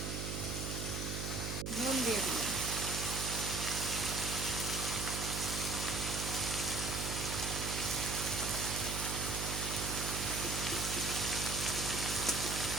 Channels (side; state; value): right; noise; hum, 3 dB below the sound